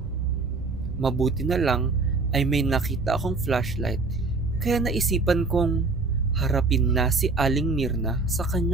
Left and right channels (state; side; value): quieter; left; 3.7 dB